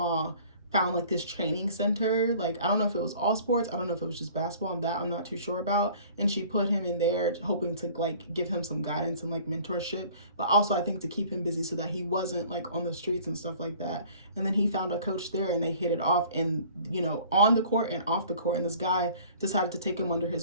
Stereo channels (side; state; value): both; inverted; correlation -0.50